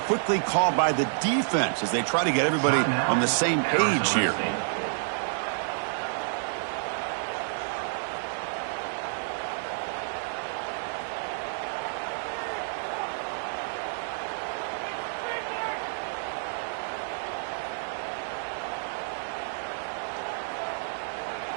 called by the defense as they try to get everybody on the same page here.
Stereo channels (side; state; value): left; silent; digital silence